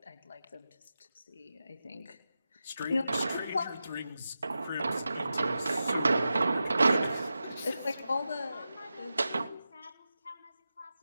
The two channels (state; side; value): inverted; both; correlation -0.91